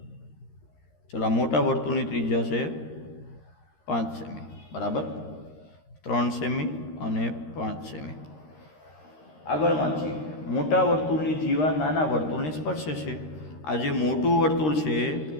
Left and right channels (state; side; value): late; right; 13 ms